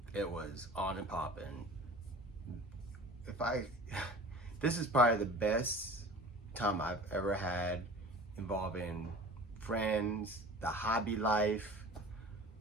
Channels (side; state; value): both; normal; correlation 0.41